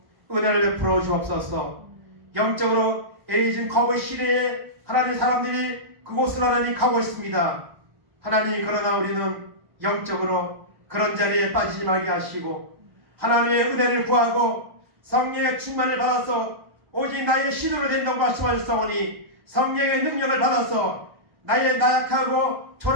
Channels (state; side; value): late; left; 1.0 ms